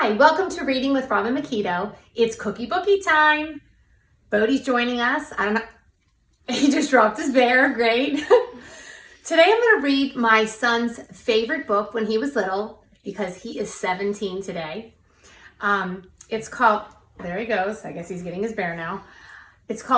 Hi, welcome to Reading with Robin McKeto. It's Cookie Bookie time. Bodie's joining us. I don't know, he just dropped his bear, great. Today I'm going to read my son's favorite book when he was little because he is 17 today. It's called, there he goes, I guess he's getting his bear now. It's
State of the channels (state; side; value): identical; both; correlation 1.00